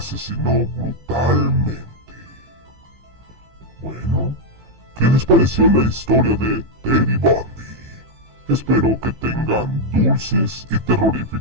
brutalmente. Bueno, ¿qué les pareció la historia de Teddy Bundy? Espero que tengan dulces y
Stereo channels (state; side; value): late; left; 15 ms